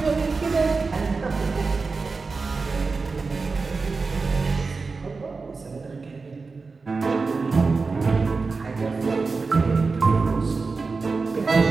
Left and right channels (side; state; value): left; quieter; 4.2 dB